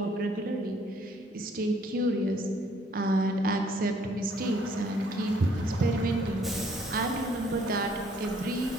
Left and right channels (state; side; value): normal; both; correlation 0.63